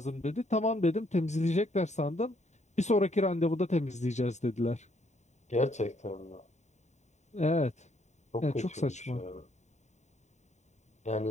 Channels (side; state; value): right; late; 0.34 ms